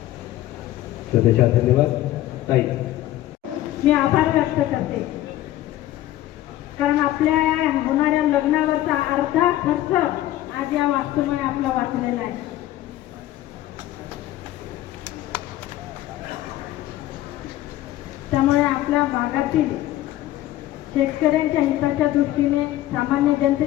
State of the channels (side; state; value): right; quieter; 14.4 dB